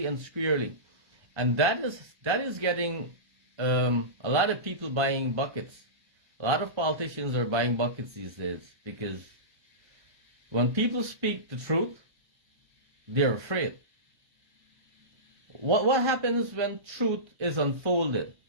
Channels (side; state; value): left; late; 1.3 ms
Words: and squarely. And that is getting a lot of people buying buckets. A lot of politicians are buying buckets these days, because when people speak the truth, they're afraid. What happens when truth is unfolded?